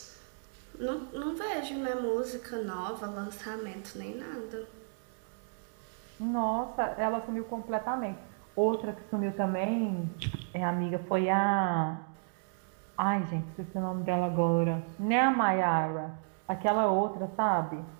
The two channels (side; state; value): left; silent; 56 dB below the other